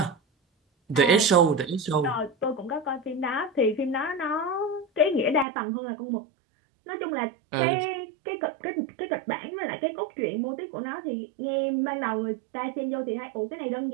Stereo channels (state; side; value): drops out; left; at 5.5 s